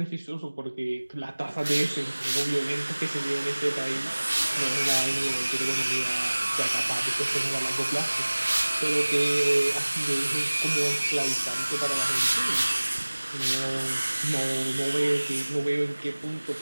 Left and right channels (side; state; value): both; inverted; correlation -1.00